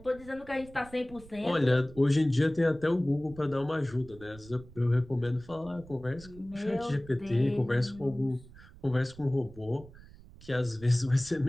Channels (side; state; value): right; noise; rumble, 20 dB below the sound